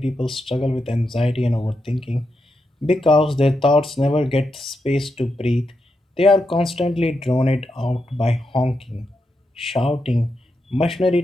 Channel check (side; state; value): both; normal; correlation 0.85